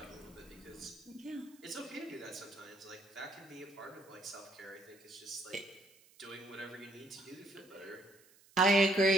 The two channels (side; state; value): right; noise; hiss, 27 dB below the sound